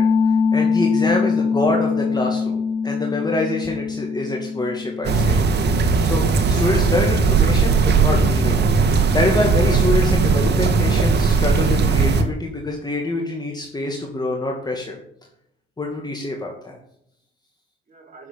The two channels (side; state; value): both; normal; correlation 0.59